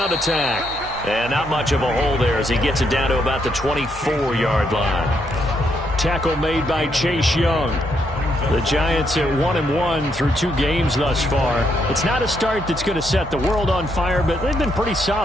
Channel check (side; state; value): both; normal; correlation 0.76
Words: attack. And not much of a hole there as he gets it down to about the 24-yard line. Tackle made by Chase Young. The Giants at 1-1 through 2 games thus far. It's not a start that's going to set the world on fire, but they've been pretty